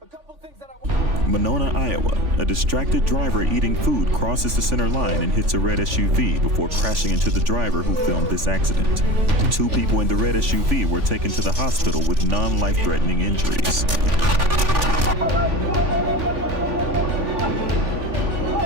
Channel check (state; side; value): late; left; 3.5 ms